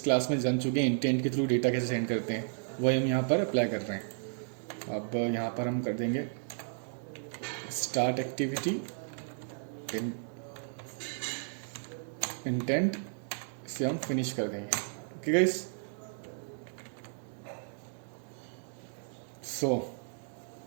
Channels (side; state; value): left; silent; 55 dB below the other